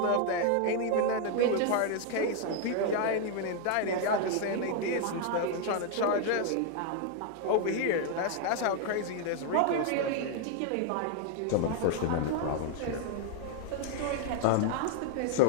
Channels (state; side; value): different; both; correlation 0.00